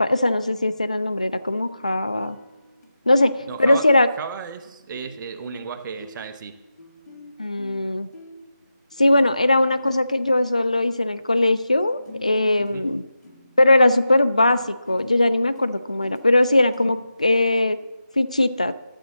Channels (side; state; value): both; inverted; correlation -0.90